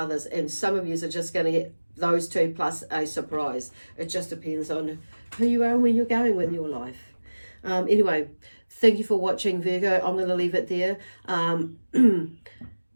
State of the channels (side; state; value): both; inverted; correlation -1.00